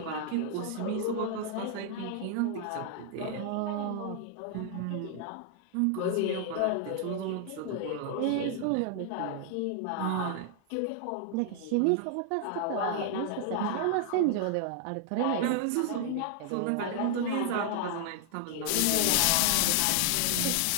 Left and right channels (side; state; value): both; different; correlation 0.00